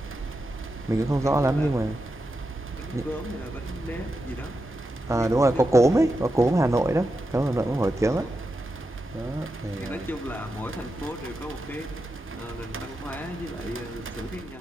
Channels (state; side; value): normal; both; correlation 0.88